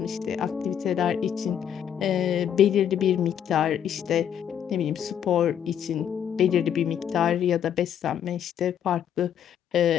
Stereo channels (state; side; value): quieter; right; 9.2 dB